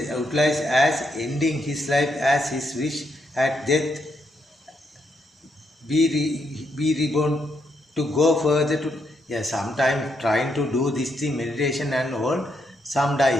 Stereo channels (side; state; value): both; normal; correlation 0.78